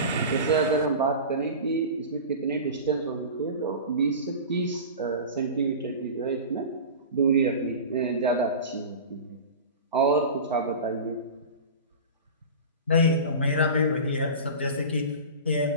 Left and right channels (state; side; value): inverted; both; correlation -0.32